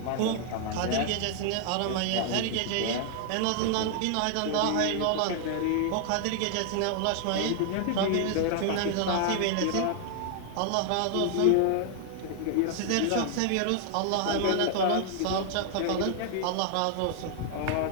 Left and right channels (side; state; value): both; different; correlation 0.00